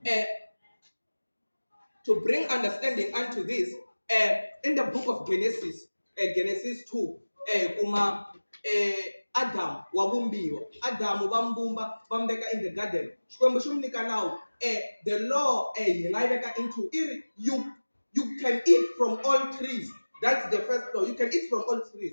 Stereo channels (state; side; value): inverted; both; correlation -1.00